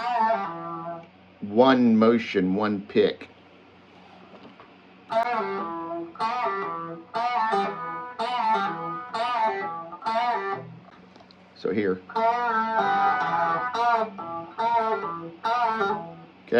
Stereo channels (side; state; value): both; identical; correlation 1.00